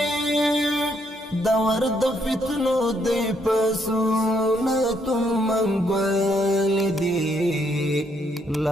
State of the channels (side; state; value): both; normal; correlation 0.73